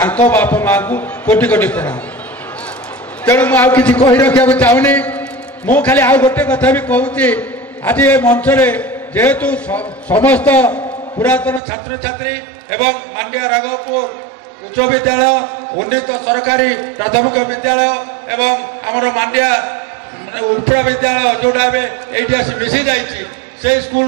माँ को कोटि कोटि प्रणाम तेणु मुझे कि कही रखा चाहूनी मु खाली आउ गोटे कथा भी कहूँ आज ये मंच जेहेतु समस्त पुरातन छात्र छात्री एवं मांडिया राघवपुर उच्च विद्यालय उन्नीत सरकारी प्राथमिक विद्यालय एवं आमर मांडिया उपरा विद्यालय जोड़ा ये आसी मिसी जा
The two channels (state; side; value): drops out; left; at 11.6 s